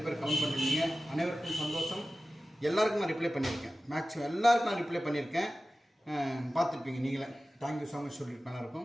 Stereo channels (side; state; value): both; normal; correlation 0.95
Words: பேர் கமெண்ட் பண்ணிருந்தீங்க. அனைவருக்கும் சந்தோஷம். எல்லாருக்கும் நான் ரிப்ளை பண்ணியிருக்கேன். மேக்ஸிமம் எல்லாருக்கும் நான் ரிப்ளை பண்ணியிருக்கேன். பார்த்துருப்பீங்க நீங்களே. தேங்க்யூ ஸோ மச் சொல்லியிருப்பேன்.